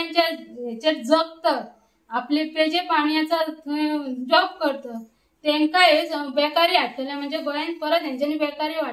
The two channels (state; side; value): identical; both; correlation 1.00